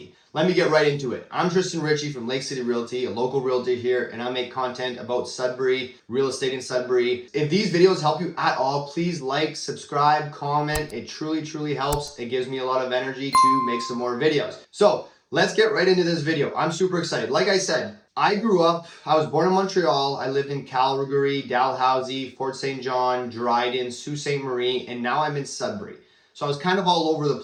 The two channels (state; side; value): identical; both; correlation 1.00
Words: Let me get right into it. I'm Tristan Ritchie from Lake City Realty, a local realtor here, and I make content about Sudbury, real estate in Sudbury. If these videos help you at all, please like, subscribe, comment. It truly helps. It gives me a lot of energy to make some more videos. So let's get right into this video. I'm super excited. Like I said, I was born in Montreal. I lived in Calgary, Dalhousie, Fort St. John, Dryden, Sault Ste. Marie, and now I'm in Sudbury. So I was kind of all over the